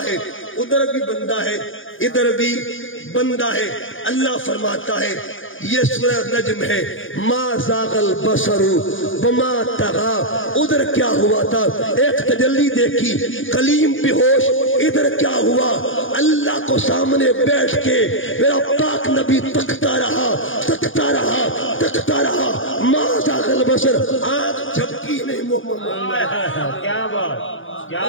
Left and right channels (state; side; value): late; right; 0.58 ms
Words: ہے۔ ادھر بھی بندہ ہے، ادھر بھی بندہ ہے۔ اللہ فرماتا ہے، یہ سورہ نجم ہے، ما زاغ البصر وما طغا۔ ادھر کیا ہوا تھا؟ ایک تجلی دیکھی، کلیم بے ہوش۔ ادھر کیا ہوا؟ اللہ کو سامنے بیٹھ کے میرا پاک نبی تکتا رہا، تکتا رہا، تکتا رہا۔ ما زاغ البصر، آنکھ جھپکی نہیں محمد۔ کیا بات،